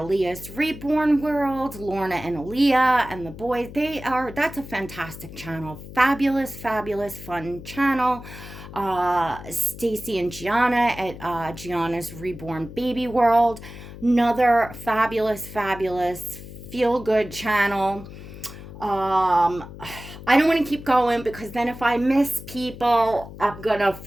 Reborn World, Lorna and Aliyah and the boys, that's a fantastic channel. Fabulous fun channel. Stacy and Giana at Giana's Reborn Baby World, another fabulous feel-good channel. I don't want to keep going because then if I miss people, I'm gonna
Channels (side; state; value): left; noise; hum, 14 dB below the sound